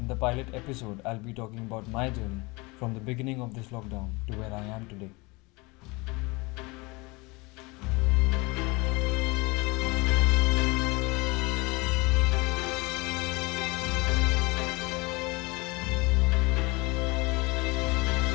the pilot episode, I'll be talking about my journey from the beginning of this lockdown to where I am today.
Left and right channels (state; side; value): quieter; right; 25.3 dB